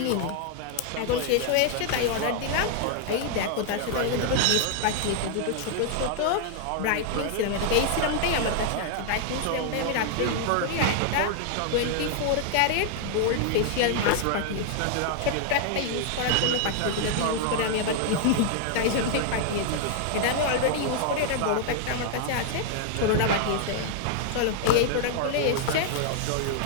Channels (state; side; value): different; both; correlation -0.01